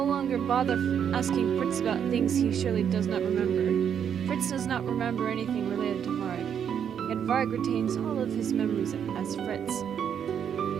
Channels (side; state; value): left; quieter; 8.3 dB